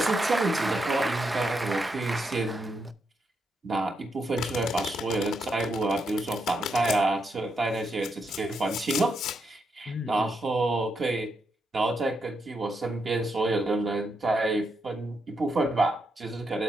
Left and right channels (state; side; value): normal; both; correlation 0.81